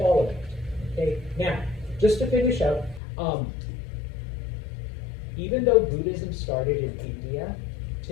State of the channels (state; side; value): drops out; right; at 3.0 s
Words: it. Okay, now, just to finish up, even though Buddhism started in India,